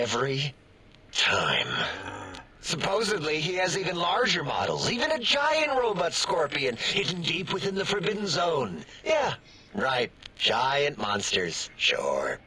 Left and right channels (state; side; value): identical; both; correlation 1.00